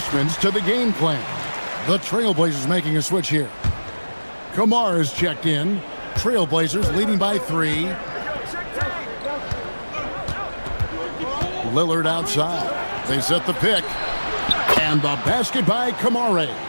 to the game plan. The Trailblazers making a switch here. Kamara is checked in. Trailblazers leading by 3. Lillard outside. They set the pick. And the basket by Kamara.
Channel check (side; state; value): both; inverted; correlation -1.00